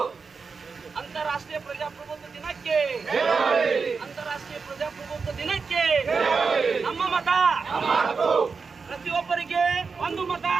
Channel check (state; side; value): quieter; left; 5.0 dB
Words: ಅಂತಾರಾಷ್ಟ್ರೀಯ ಪ್ರಜಾಪ್ರಭುತ್ವ ದಿನಕ್ಕೆ, ಅಂತಾರಾಷ್ಟ್ರೀಯ ಪ್ರಜಾಪ್ರಭುತ್ವ ದಿನಕ್ಕೆ ನಮ್ಮ ಮತ. ಪ್ರತಿಯೊಬ್ಬರಿಗೆ ಒಂದು ಮತ,